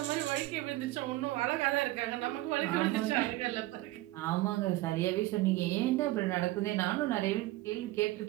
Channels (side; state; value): left; quieter; 17.8 dB